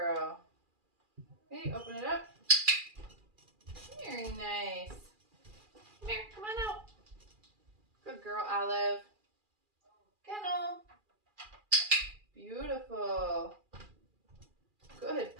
Okay, open it up. Very nice. Come here, come on out. Good girl, Olive. Kennel. Beautiful. Good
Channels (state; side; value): late; left; 2.4 ms